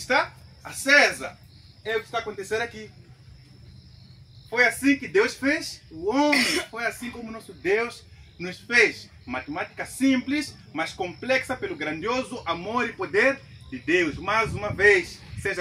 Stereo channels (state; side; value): identical; both; correlation 1.00